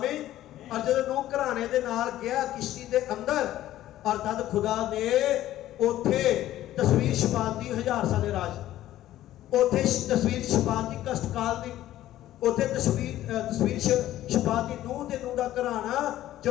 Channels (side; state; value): right; quieter; 13.7 dB